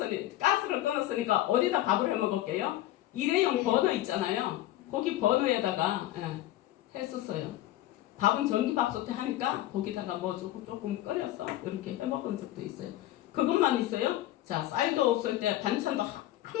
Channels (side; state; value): right; quieter; 14.7 dB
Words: 가스를 끊었으니까 어디다 밥을 해 먹을게요? 일회용 버너 있잖아요. 거기 버너에다가 했었어요. 밥은 전기밥솥에 하니까 거기다가 뭐 조금 끓여서 이렇게 해 먹은 적도 있어요. 그것만 있어요. 쌀도 없을 때 반찬도